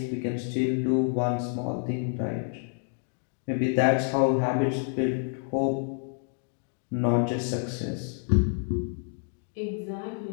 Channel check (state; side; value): silent; right; 56 dB below the other